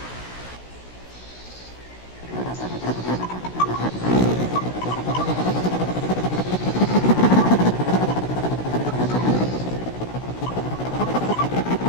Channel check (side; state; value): right; late; 16 ms